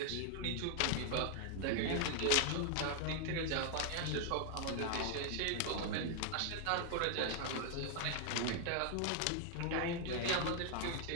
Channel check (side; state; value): both; different; correlation 0.00